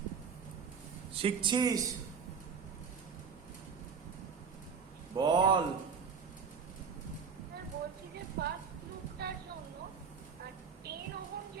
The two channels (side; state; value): left; quieter; 6.0 dB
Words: শিখছিস? বল। স্যার বলছি যে ফার্স্ট লুপটার জন্য 10 ওহম